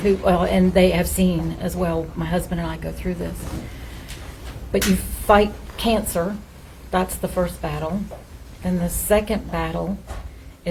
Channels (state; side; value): identical; both; correlation 1.00